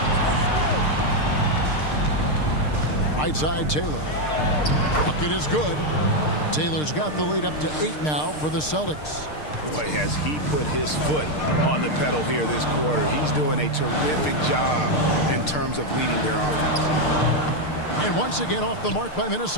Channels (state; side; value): late; right; 6.6 ms